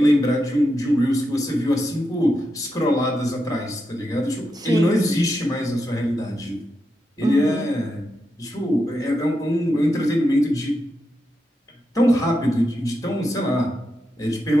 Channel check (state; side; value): normal; both; correlation 0.86